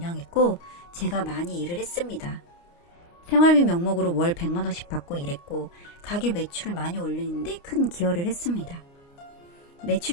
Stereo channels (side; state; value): right; late; 29 ms